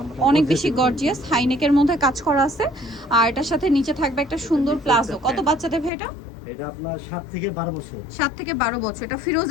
অনেক বেশি গর্জিয়াস, হাইনেকের মধ্যে কাজ করা আছে আর এটার সাথে নিচে থাকবে একটা সুন্দর প্লাজো। কত বাচ্চাদের ভাই এটা? এটা আপনার 7 থেকে 12 বছর। 7 থেকে 12 বছর। এটা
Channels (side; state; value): right; drops out; at 5.9 s